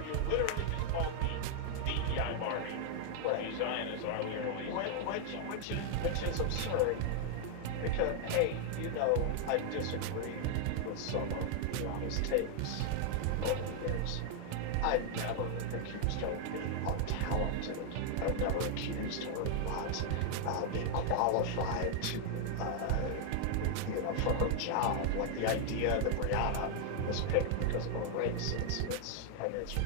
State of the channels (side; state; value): both; different; correlation 0.00